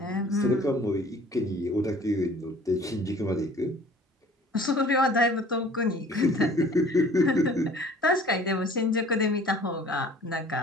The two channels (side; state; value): both; normal; correlation 0.50